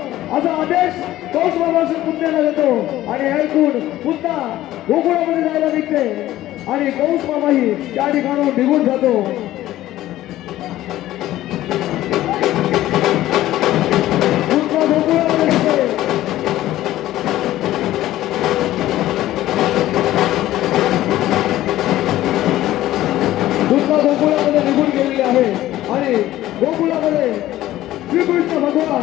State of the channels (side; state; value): right; quieter; 14.7 dB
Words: आदेश कंस मामाच्या पुतण्याला देतो. आणि ऐकून पुतना गोकुळामध्ये जायला निघते आणि कंस मामाही त्या ठिकाणून निघून जातो. पुतना गोकुळामध्ये निघते. पुतना गोकुळामध्ये निघून गेलेली आहे आणि गोकुळामध्ये श्रीकृष्ण